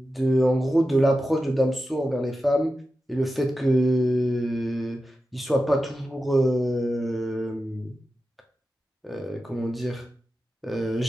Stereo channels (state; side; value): normal; both; correlation 0.92